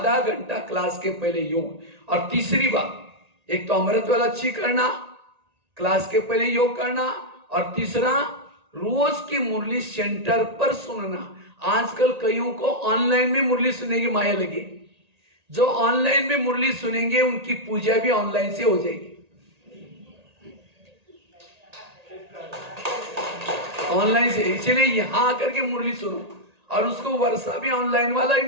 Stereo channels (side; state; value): left; late; 1.8 ms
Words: घंटा क्लास के पहले योग। और तीसरी बात, एक तो अमृत वाला अच्छी करना, क्लास के पहले योग करना, और तीसरा रोज की मुरली सेंटर पर सुनना। आजकल कईयों को ऑनलाइन में मुरली सुनने की माया लगी। जो ऑनलाइन में मुरली सुनेंगे उनकी पूजा भी ऑनलाइन से हो जाएगी। ऑनलाइन से, इसलिए यहां आकर के मुरली सुनो, और उसको वर्षा भी ऑनलाइन वाला ही